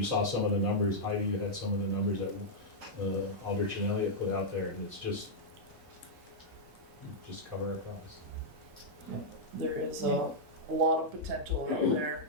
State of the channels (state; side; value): normal; both; correlation -0.06